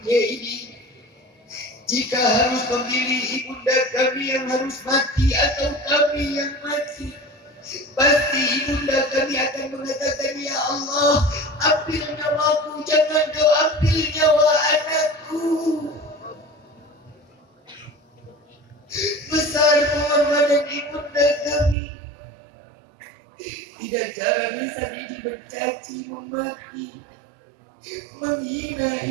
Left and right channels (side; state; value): left; drops out; at 21.8 s